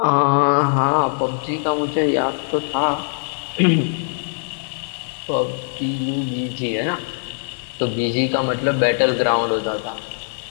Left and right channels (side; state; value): right; silent; 65 dB below the other